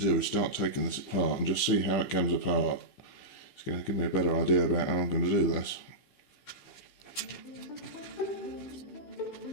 is start taking this apart and just see how it comes apart. It's going to give me a better idea about how I'm going to do this.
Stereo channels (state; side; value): late; right; 16 ms